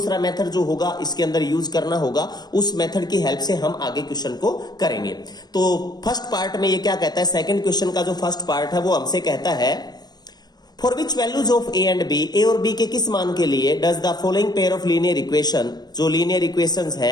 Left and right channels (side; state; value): right; late; 0.19 ms